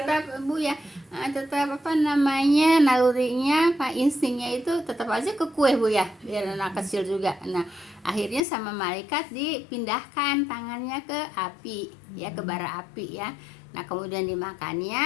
tetap Bu ya, tetap nalurinya instingnya itu tetap aja ke kue Bu ya, biar anak kecil juga. Nah, akhirnya sama malaikat dipindahkan tangannya ke api ya, ke bara api ya. Nah, kemudian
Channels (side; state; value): right; drops out; at 8.4 s